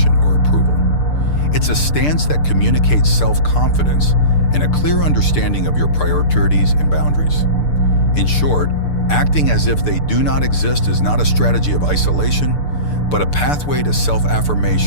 or approval. It's a stance that communicates self-confidence and a clear understanding of your priorities and boundaries. In short, acting as if they do not exist is not a strategy of isolation, but a pathway to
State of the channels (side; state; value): right; late; 6.8 ms